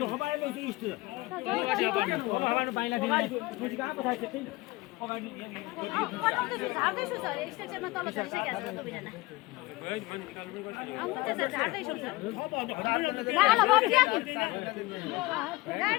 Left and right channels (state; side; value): quieter; right; 21.4 dB